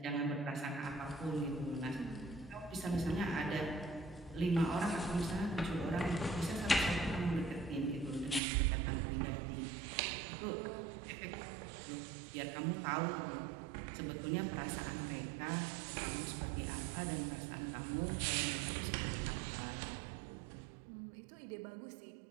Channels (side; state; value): left; drops out; at 8.4 s